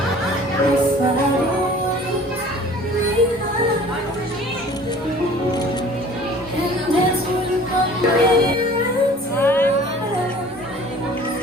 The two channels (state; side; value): normal; both; correlation 0.48